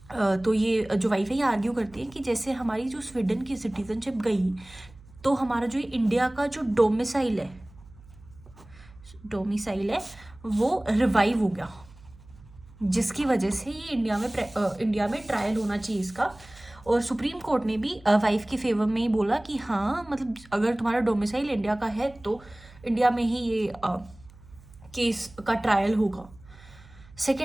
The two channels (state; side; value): noise; right; hum, 23 dB below the sound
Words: तो ये जो वाइफ है ये आर्ग्यू करती है कि जैसे हमारी जो स्वीडन की सिटीजनशिप गई तो हमारा जो इंडिया का जो डोमिसाइल है वो रिवाइव हो गया, जिसकी वजह से ये इंडिया में ट्रायल होना चाहिए इसका। और सुप्रीम कोर्ट ने भी वाइफ के फेवर में ही बोला कि हाँ, मतलब अगर तुम्हारा डोमिसाइल इंडिया का है तो इंडिया में ही ये केस का ट्रायल होगा।